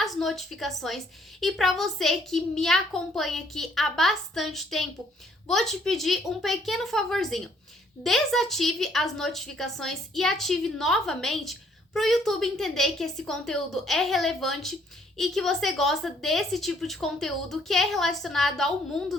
notificações, e para você que me acompanha aqui há bastante tempo, vou te pedir um pequeno favorzinho. Desative as notificações e ative novamente para o YouTube entender que esse conteúdo é relevante e que você gosta desse tipo de conteúdo que é relacionado ao mundo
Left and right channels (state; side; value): normal; both; correlation 0.65